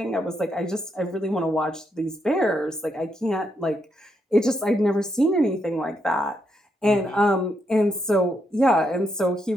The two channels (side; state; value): both; normal; correlation 0.79